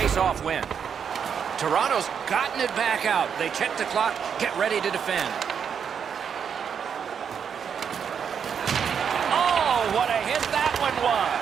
win. Toronto's gotten it back out. They check the clock, get ready to defend. Oh, what a hit that one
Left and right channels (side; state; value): left; quieter; 7.3 dB